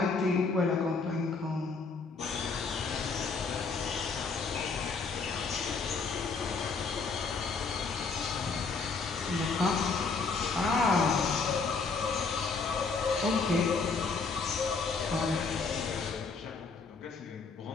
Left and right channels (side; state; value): right; quieter; 4.6 dB